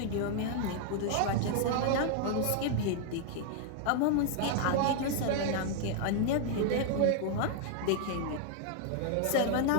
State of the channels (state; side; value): different; both; correlation 0.00